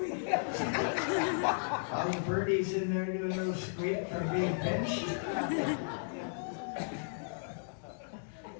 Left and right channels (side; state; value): right; silent; digital silence